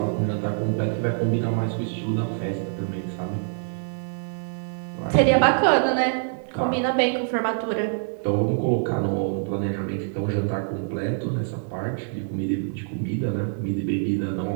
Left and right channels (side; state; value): left; silent; digital silence